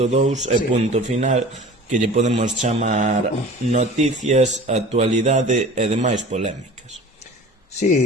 e punto final, que lle podemos chamar noticias, actualidade e demais polémicas.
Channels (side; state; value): both; normal; correlation 0.41